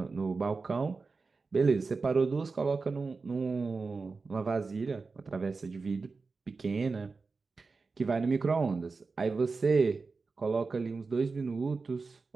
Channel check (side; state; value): left; quieter; 4.3 dB